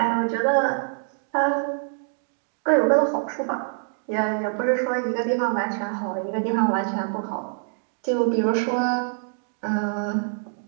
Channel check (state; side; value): silent; left; digital silence